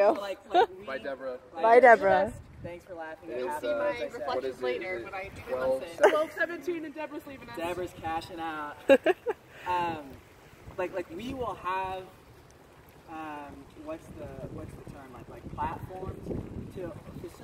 Like we, Bye, Deborah. Bye, Deborah. Thanks for laughing. It's, See my what reflections is it? later, Is it but I didn't 12, listen. 12:17 and Deborah's leaving us. Deborah's cashing out. Like we will have what's the term, like platforms to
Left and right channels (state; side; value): identical; both; correlation 1.00